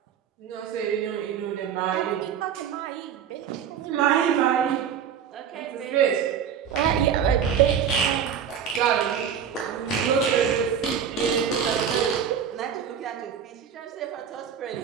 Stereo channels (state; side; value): quieter; left; 8.1 dB